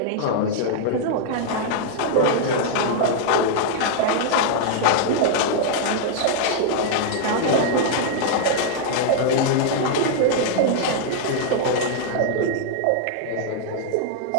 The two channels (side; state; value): both; different; correlation -0.01